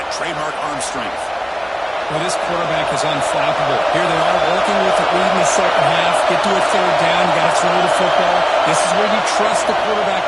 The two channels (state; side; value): identical; both; correlation 1.00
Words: trademark arm strength. Well, this quarterback is unflappable. Here they are working with the lead in the second half. Get to a third down. You got to throw the football. This is where you trust the